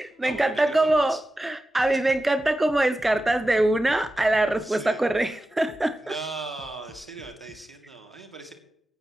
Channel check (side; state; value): both; normal; correlation 0.93